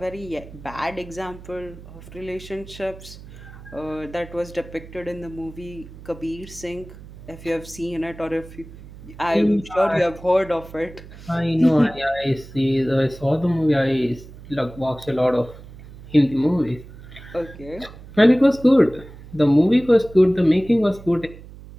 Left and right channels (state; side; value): noise; right; hum, 17 dB below the sound